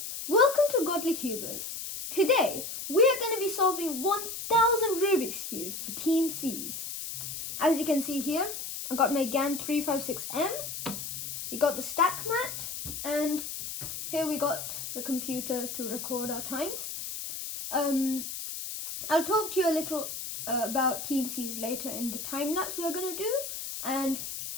welcome to Godly Cubers. Today we are going to be solving 1000 Rubik's Cubes for Team C's. As you can see here, I got my GAN 356M, we got the stack mat, and here we got the computer to record our times. I'll talk to you a little about Team C's later in the time lapse we're going to do, and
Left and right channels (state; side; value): noise; left; hiss, 7 dB below the sound